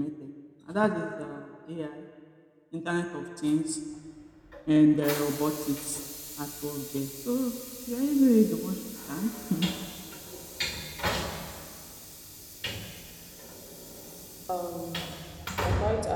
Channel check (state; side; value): identical; both; correlation 1.00